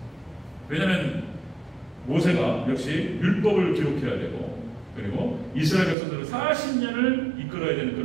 왜냐하면 모세가 역시 율법을 기록해야 되고, 그리고 이스라엘 백성들을 40년을 이끌어야 되는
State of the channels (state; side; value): drops out; left; at 6.0 s